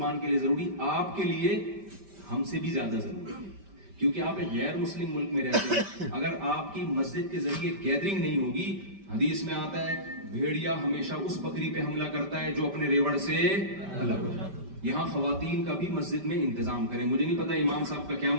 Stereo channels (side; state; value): left; late; 5.1 ms